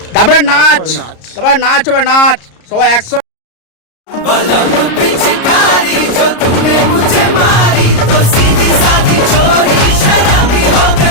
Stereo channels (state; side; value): late; right; 34 ms